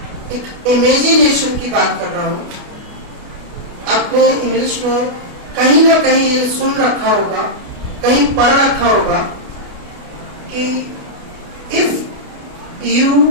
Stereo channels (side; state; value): left; late; 28 ms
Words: एक इमेजिनेशन की बात कर रहा हूं। आपने इंग्लिश में कहीं ना कहीं ये सुन रखा होगा, कहीं पढ़ रखा होगा कि if you